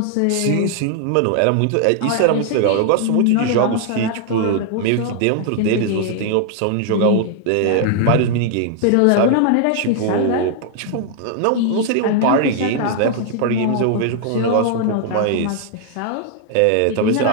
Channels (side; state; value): both; different; correlation 0.00